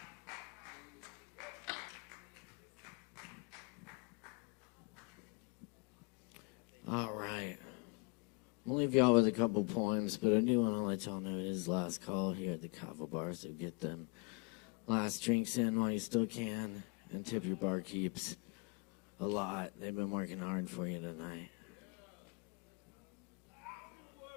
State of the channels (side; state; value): right; quieter; 31.9 dB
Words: All right. We'll leave y'all with a couple poems, but I do want to let y'all know it is last call here at the Kava bar, so get them last drinks in while you still can, and tip your barkeeps a lot. They've been working hard for you tonight.